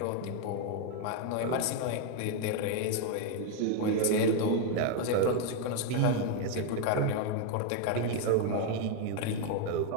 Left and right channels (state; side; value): different; both; correlation 0.01